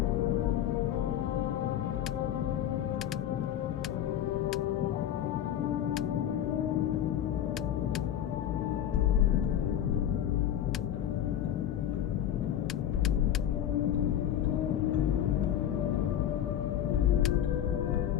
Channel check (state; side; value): quieter; right; 10.7 dB